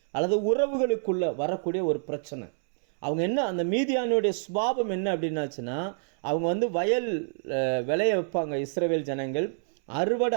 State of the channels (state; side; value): silent; left; 60 dB below the other